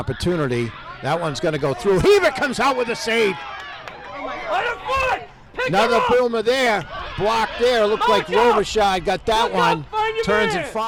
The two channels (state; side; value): identical; both; correlation 1.00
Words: That one's going to go through. Hebert comes out with a save. Another boomer there. Blocked there. Looked like Robichaud got that one. Turns and